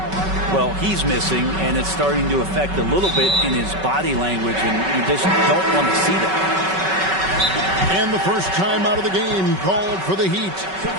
Well, he's missing, and it's starting to affect a little bit in his body language, and you just don't want to see that. And the first time out of the game called for the Heat.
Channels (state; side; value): late; left; 5.3 ms